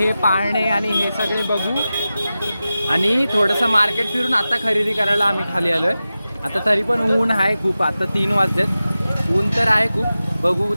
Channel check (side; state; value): both; inverted; correlation -0.94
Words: पाळणे आणि हे सगळे बघू आणि थोडंसं मार्केट फिरून आता खरेदी करायला आम्ही खाली आलो आहे. आता तरी पण ऊन आहे खूप. आता 3 वाजलेत. ऊन तर आहे खूप. बघू